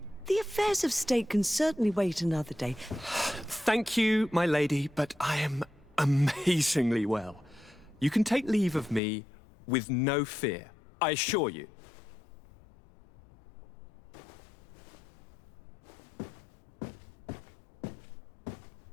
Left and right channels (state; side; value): drops out; right; at 9.0 s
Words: The affairs of state can certainly wait another day. Thank you, my lady, but I am amazingly well. You can take leave of me with no fear, I assure you.